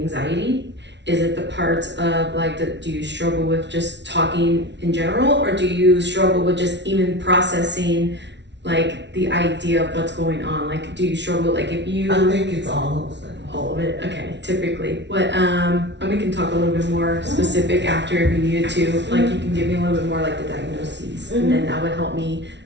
Is it the parts of do you struggle with just talking in general, or do you struggle with just even processing the idea of what's going on? Do you struggle if you? I think it's all of those things. All of it, okay. Typically, what and we can talk a little bit more specific after if you needed to. You can give me a little bit more the diagnoses, and then that would help me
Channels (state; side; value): late; left; 0.51 ms